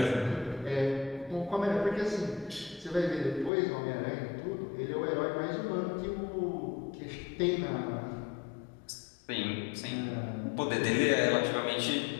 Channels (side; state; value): right; drops out; at 3.5 s